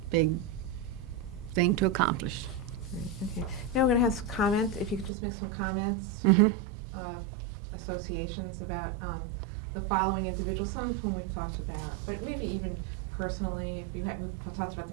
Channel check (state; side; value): drops out; left; at 5.1 s